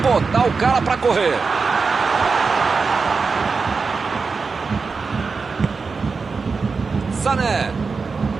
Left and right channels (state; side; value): quieter; left; 4.7 dB